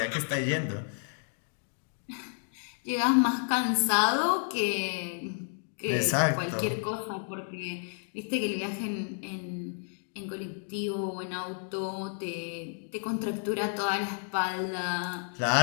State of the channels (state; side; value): silent; right; 57 dB below the other